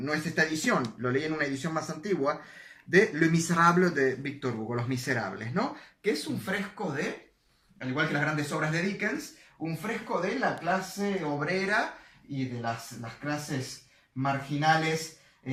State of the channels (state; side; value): identical; both; correlation 1.00